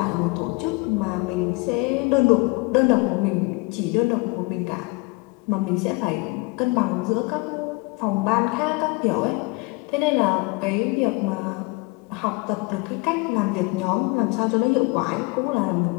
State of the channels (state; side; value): quieter; right; 27.0 dB